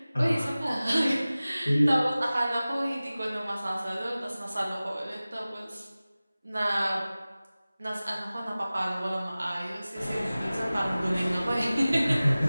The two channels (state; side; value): inverted; both; correlation -0.97